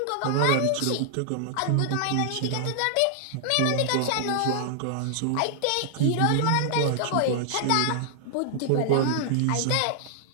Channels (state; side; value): different; both; correlation -0.01